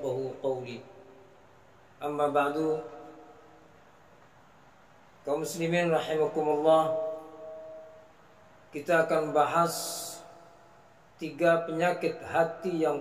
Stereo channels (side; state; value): both; identical; correlation 1.00